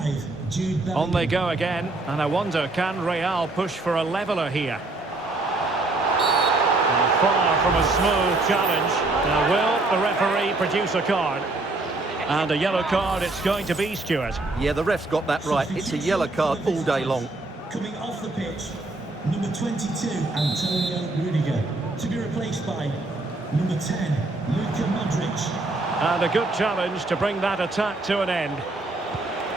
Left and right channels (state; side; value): quieter; left; 3.0 dB